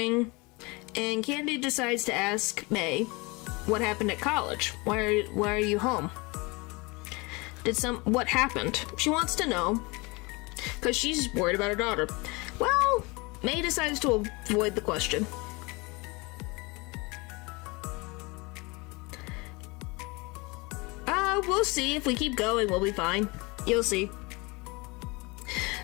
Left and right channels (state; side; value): quieter; right; 26.2 dB